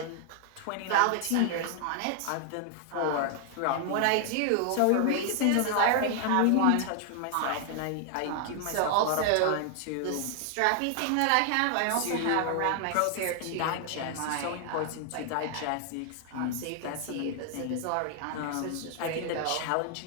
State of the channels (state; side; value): different; both; correlation 0.00